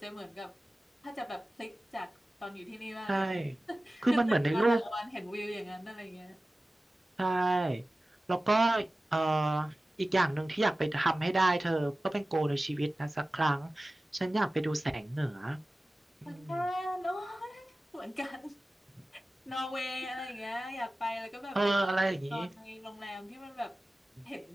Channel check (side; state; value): both; normal; correlation 0.96